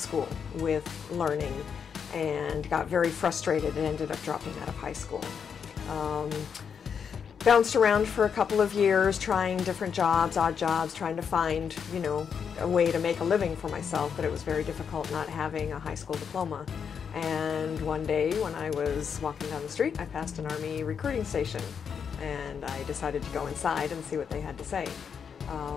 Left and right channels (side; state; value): right; quieter; 6.9 dB